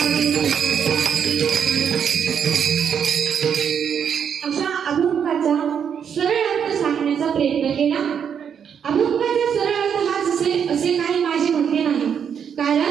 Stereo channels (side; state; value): left; quieter; 7.7 dB